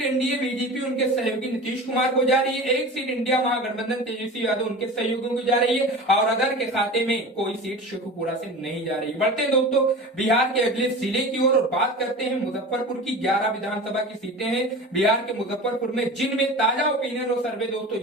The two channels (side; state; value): both; normal; correlation 0.34